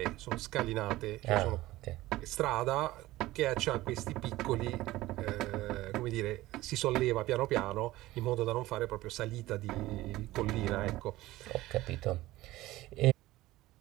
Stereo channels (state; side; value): quieter; left; 17.4 dB